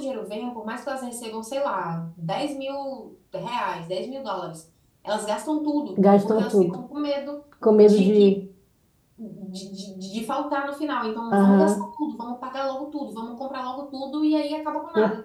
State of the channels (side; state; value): both; identical; correlation 1.00